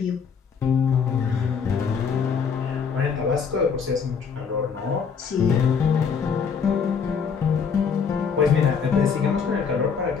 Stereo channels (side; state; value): right; quieter; 6.2 dB